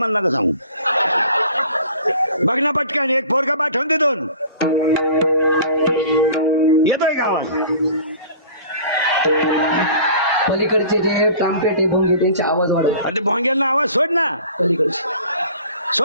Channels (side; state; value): both; inverted; correlation -0.45